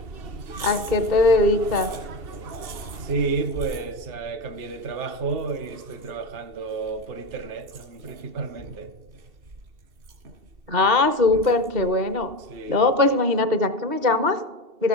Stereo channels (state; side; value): late; left; 2.7 ms